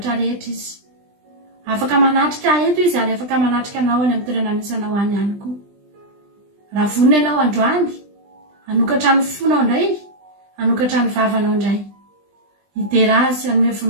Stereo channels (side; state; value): left; late; 20 ms